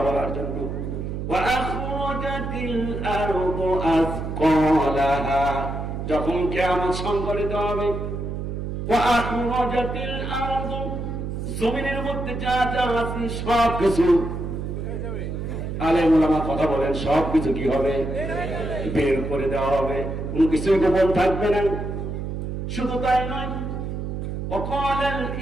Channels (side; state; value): right; noise; hum, 4 dB below the sound